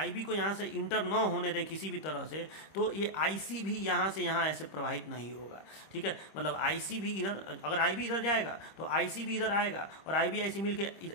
को यहाँ से इंटर न होने दें किसी भी तरह से, तो ये IC भी यहाँ से यहाँ ऐसे प्रवाहित नहीं होगा, ठीक है। मतलब IC भी इधर, अगर IB इधर जाएगा तो IC भी इधर आएगा, और IB IC मिलके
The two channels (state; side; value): late; right; 25 ms